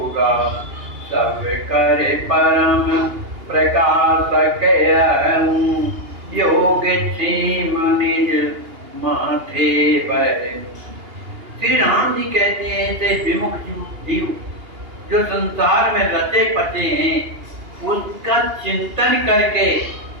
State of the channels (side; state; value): left; late; 2.8 ms